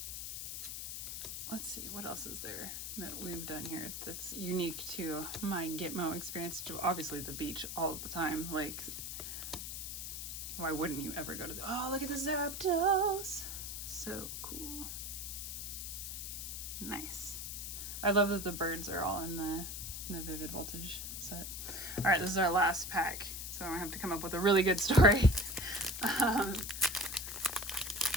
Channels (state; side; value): noise; left; hiss, 6 dB below the sound